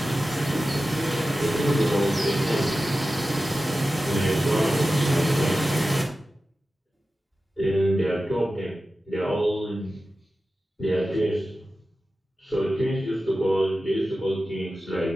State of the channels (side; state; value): both; normal; correlation 0.94